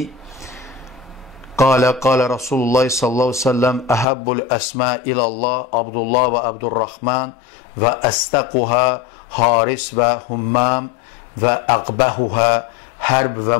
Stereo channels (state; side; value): drops out; right; at 4.0 s